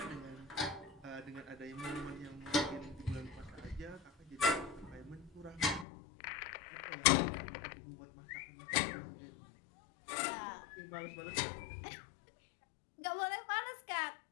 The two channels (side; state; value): right; drops out; at 5.9 s